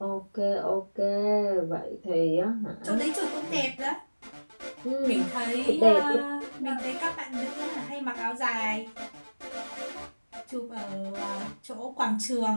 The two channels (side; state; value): both; inverted; correlation -1.00